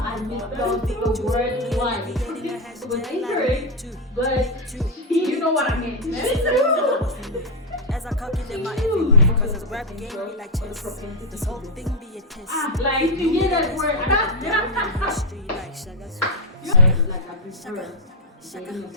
misspelled the word twice. It was incorrect, but you know what I mean. As I calculate my every move, because this rap game be like chess. This whole thing be a test. like to get that word. History like Shaka Zulu. Like I prefer dating a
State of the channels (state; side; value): normal; both; correlation 0.02